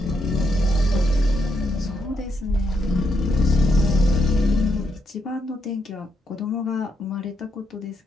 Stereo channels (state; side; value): normal; both; correlation 0.80